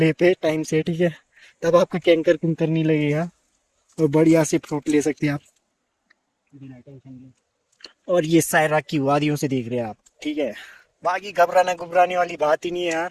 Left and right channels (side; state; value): both; identical; correlation 1.00